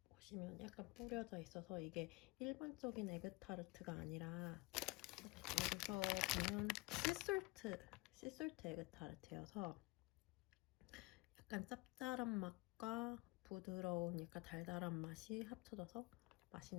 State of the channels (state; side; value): quieter; right; 24.5 dB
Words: 보시면 약간 뿌려져 있어서 이게 일반적인 에그타르트가 아니라 여기서 보면 씨솔트 에그타르트여서 약간 짭짤한 맛과 부드러운 약간 달달한 맛이 합쳐져서